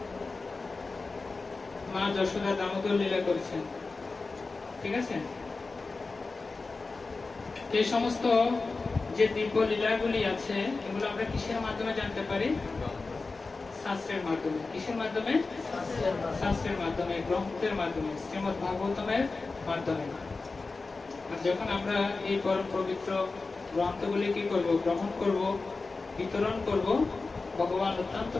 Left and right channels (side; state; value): right; quieter; 3.9 dB